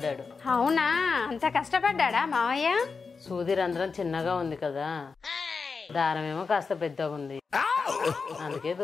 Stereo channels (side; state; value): right; quieter; 4.9 dB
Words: అవునా? అంత కష్టపడ్డా మావయ్య? సూది రంధ్రం చిన్నగా ఉంది కదా, దారం ఏమో కాస్త పెద్దగా ఉంది, అందుకే